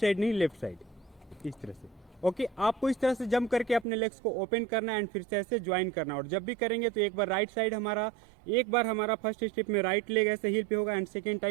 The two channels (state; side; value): drops out; left; at 3.9 s